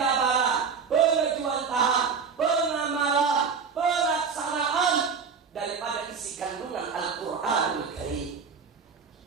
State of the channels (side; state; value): left; quieter; 5.8 dB